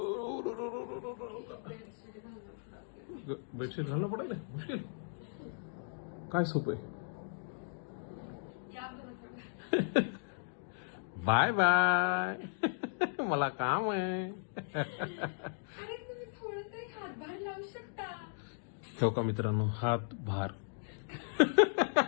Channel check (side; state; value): right; silent; digital silence